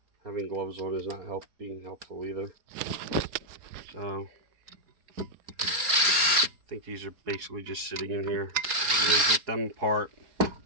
Having gloves on is not being helpful either. So I think these are basically just sitting in here. I'm going to get them apart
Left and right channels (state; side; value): late; left; 4.8 ms